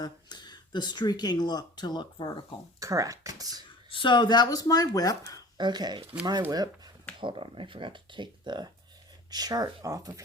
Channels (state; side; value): normal; both; correlation 0.43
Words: streaking look to look vertical. Correct. So that was my whip. Okay, my whip. Hold on, I forgot to take the chart off of